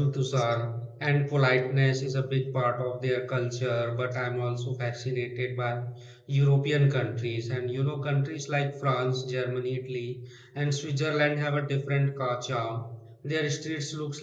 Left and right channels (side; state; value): both; identical; correlation 1.00